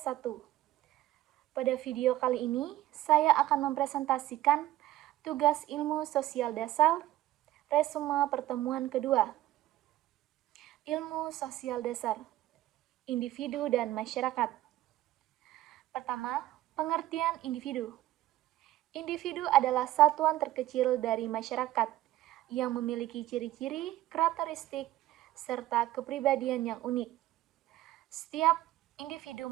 Pada video kali ini, saya akan mempresentasikan tugas ilmu sosial dasar, resume pertemuan kedua. Ilmu sosial dasar, individu dan masyarakat. Pertama, pengertian individu. Individu adalah satuan terkecil dari masyarakat yang memiliki ciri-ciri, karakteristik, serta kepribadian yang unik. Setiap individu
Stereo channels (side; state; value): left; quieter; 15.0 dB